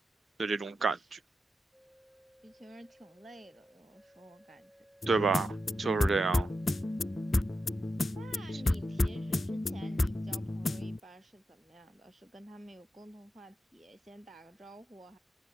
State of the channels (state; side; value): normal; both; correlation 0.89